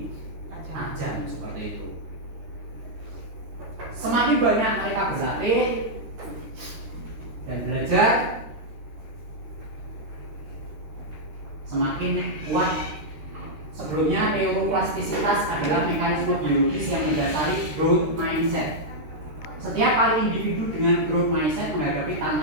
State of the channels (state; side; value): late; left; 13 ms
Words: tajam seperti itu. Semakin banyak mereka berlatih dan belajar, semakin kuat. Sebelumnya neuroplastisitas adalah mekanisme biologis yang mendasari growth mindset. Setiap kali individu dengan growth mindset menghadapi